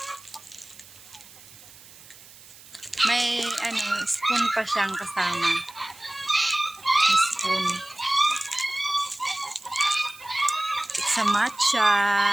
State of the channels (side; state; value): right; noise; hiss, 21 dB below the sound